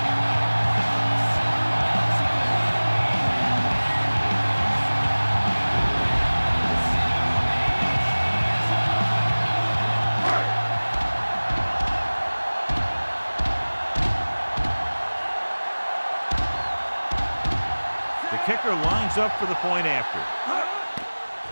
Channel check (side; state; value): both; inverted; correlation -1.00